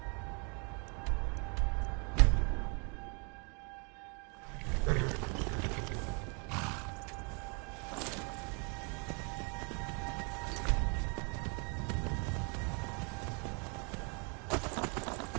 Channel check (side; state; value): left; quieter; 34.9 dB